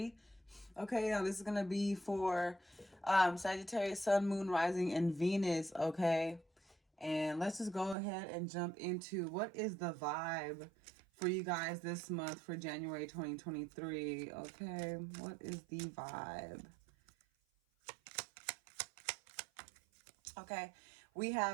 Okay, now this is going to be for Sagittarius, Sun, Moon, Rising, and Venus, okay? And let's just go ahead and jump into what is the vibe for you guys this month for January 2023, okay? What is the vibe? Okay, we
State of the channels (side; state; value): left; drops out; at 8.0 s